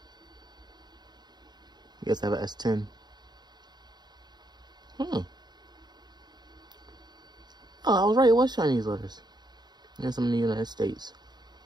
I guess I have an S10. Oh, I was right. It was Chinese letters. And some in the United States.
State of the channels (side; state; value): left; late; 0.20 ms